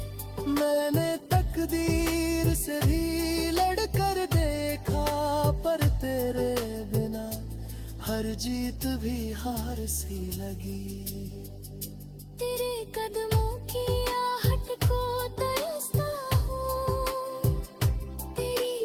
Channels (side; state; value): both; identical; correlation 1.00